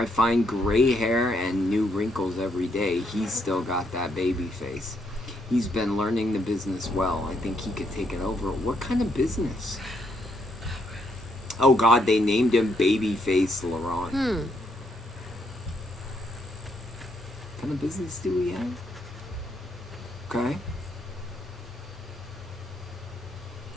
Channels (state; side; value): normal; both; correlation 0.75